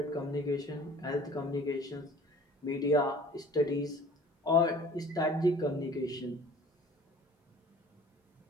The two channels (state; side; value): normal; both; correlation 0.48